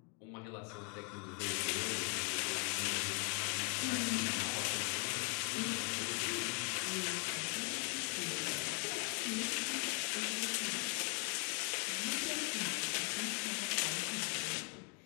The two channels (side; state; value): right; quieter; 37.8 dB